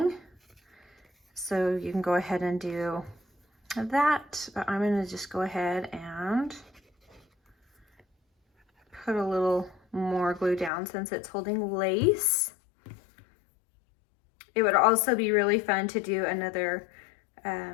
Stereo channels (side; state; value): right; drops out; at 10.7 s